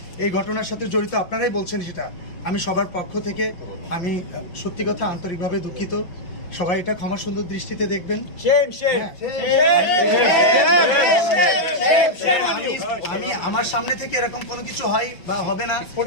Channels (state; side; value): late; right; 5.7 ms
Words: এই ঘটনার সাথে জড়িত, আপনারাই বলছেন সেটা, আমি সবার পক্ষ থেকে আমি সত্যি কথা আন্তরিকভাবে দুঃখিত। সবাই এটা ক্ষমা সুন্দর দৃষ্টিতে দেখবেন। আমি আমার সামনে থেকে এরকম কোনো কিছু হয় বা হবে না,